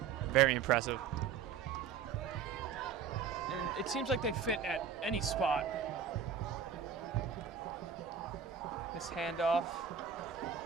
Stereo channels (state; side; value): quieter; left; 7.0 dB